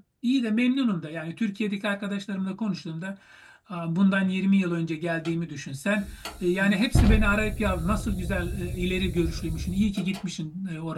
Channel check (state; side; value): identical; both; correlation 1.00